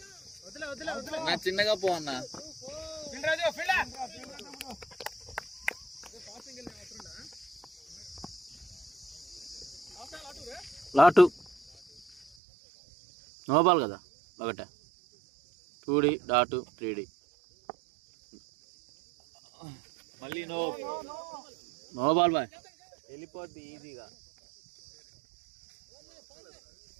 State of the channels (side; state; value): left; drops out; at 12.4 s